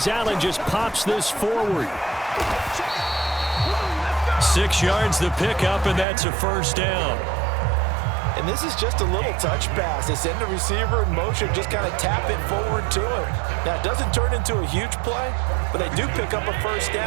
Allen just pops this forward. 6 yards the pickup, and that's a first down. And this is just a little touch pass. They send the receiver in motion, just kind of tap it forward to him. Now, it doesn't turn into a huge play, but they do pick up a first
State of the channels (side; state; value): left; drops out; at 6.1 s